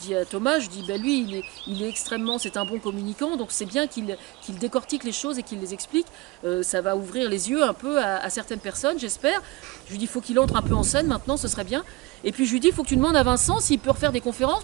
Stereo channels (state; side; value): quieter; left; 22.8 dB